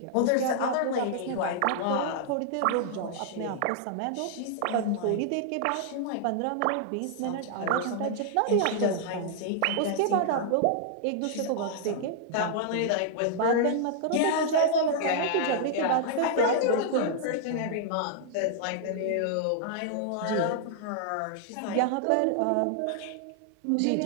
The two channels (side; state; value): both; different; correlation -0.01